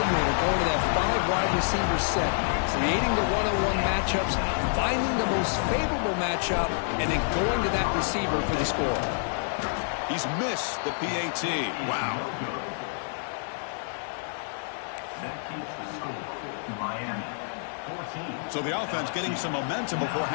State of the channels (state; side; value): silent; right; digital silence